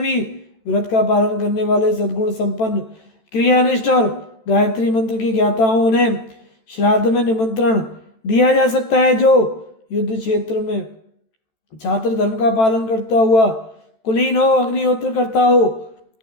व्रत का पालन करने वाले, सद्गुण संपन्न, क्रियानिष्ठ और गायत्री मंत्र के ज्ञाता हो, उन्हें श्राद्ध में निमंत्रण दिया जा सकता है। जो युद्ध क्षेत्र में छात्र धर्म का पालन करता हुआ कुलीन हो, अग्निहोत्र करता हो,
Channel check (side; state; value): right; late; 13 ms